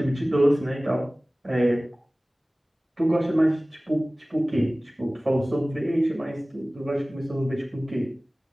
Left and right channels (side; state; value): both; normal; correlation 0.98